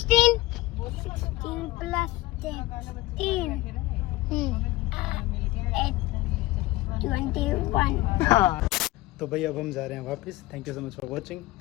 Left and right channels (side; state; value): right; quieter; 18.3 dB